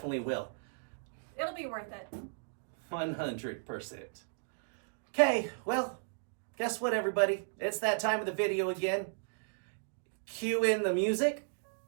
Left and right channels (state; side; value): silent; left; digital silence